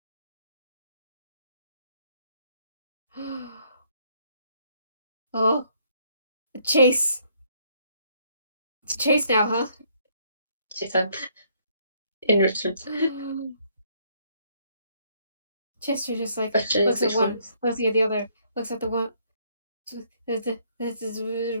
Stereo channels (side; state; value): both; inverted; correlation -0.68